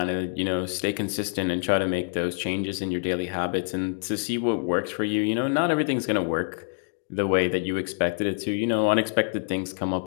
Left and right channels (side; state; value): right; silent; digital silence